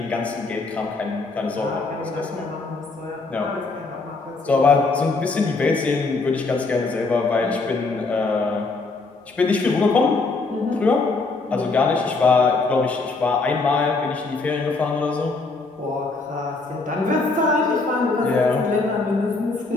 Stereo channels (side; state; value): right; quieter; 3.7 dB